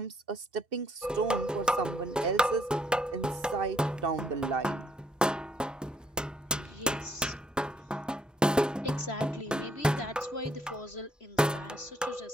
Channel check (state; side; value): normal; both; correlation 0.68